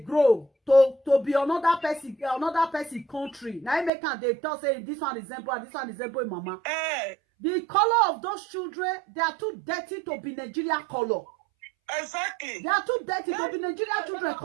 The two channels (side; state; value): left; drops out; at 3.9 s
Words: to be another person country. Now make and they tell say this one resemble mama. The color of those children, they are too dirty to be Nigeria color. Exactly. They are too dirty to be Nigeria children